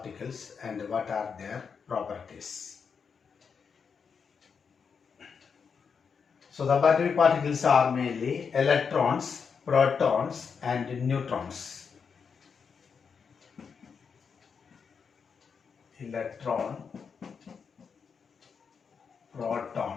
and what are their properties? So subatomic particles are mainly electrons, protons and neutrons. Electron,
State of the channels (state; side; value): quieter; right; 6.1 dB